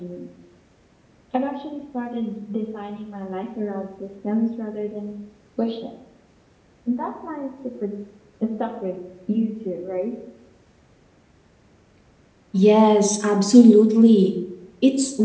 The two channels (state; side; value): identical; both; correlation 1.00